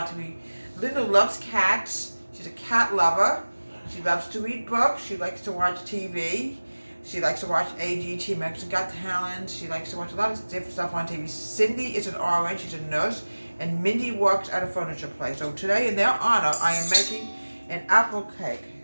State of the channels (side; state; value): both; inverted; correlation -1.00